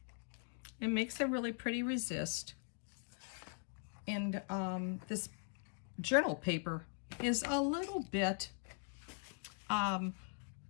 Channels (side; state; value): right; silent; 50 dB below the other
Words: It makes a really pretty resist. And this journal paper is a little bit